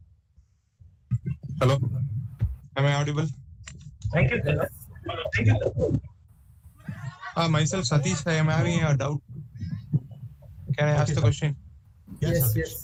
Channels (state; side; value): identical; both; correlation 1.00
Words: Hello. Am I audible? Thank you, sir. Thank you, sir. Myself, Satish, I am having a doubt. Can I ask the question?